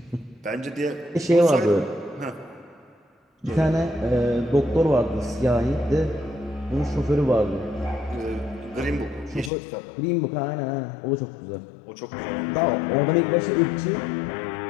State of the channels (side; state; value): right; drops out; at 9.5 s